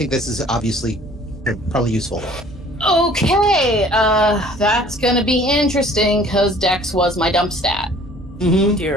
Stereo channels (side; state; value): both; normal; correlation 0.53